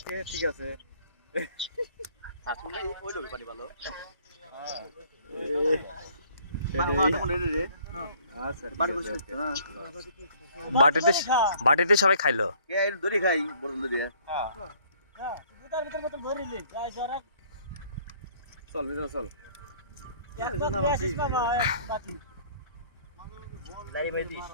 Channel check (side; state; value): both; inverted; correlation -0.58